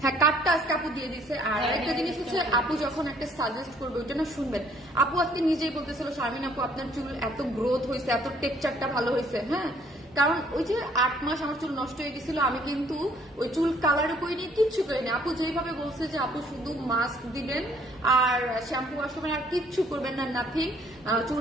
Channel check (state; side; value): normal; both; correlation 0.62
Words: হ্যাঁ কার্ডটা আজকে আপু দিয়ে দিচ্ছে। আর একটা জিনিস হচ্ছে আপু যখন একটা সাজেস্ট করবে ওইটা না শুনবেন। আপু আজকে নিজেই বলতেছিল শারমিন আপু আপনার চুল এত গ্রোথ হয়েছে, এত টেক্সচারটা ভালো হয়েছে, হ্যাঁ কারণ ওই যে 8 মাস আমার চুল নষ্ট হয়ে গেছিল, আমি কিন্তু ওই চুল কালারও করিনি, কিচ্ছু করিনি। আপু যেভাবে বলছে যে আপু শুধু মাস্ক দিবেন আর শ্যাম্পু আসবেন আর কিচ্ছু করবেন না, নাথিং,